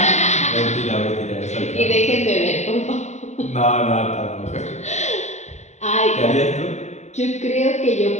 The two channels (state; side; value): late; right; 0.33 ms